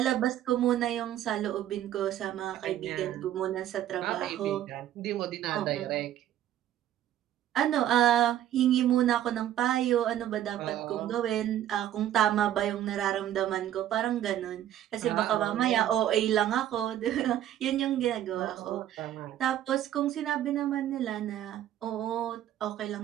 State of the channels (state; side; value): quieter; left; 11.9 dB